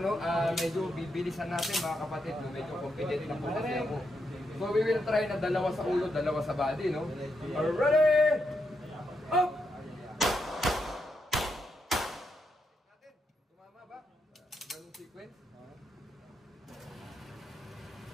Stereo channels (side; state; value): both; normal; correlation 0.82